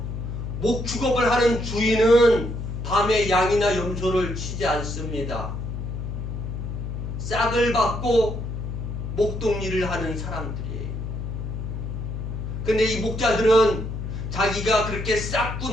목축업을 하는 주인은 밤에 양이나 염소를 치지 않습니다. 싹을 받고 목동일을 하는 사람들이에요. 근데 이 목자들은 자기가 그렇게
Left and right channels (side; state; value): left; noise; hum, 5 dB below the sound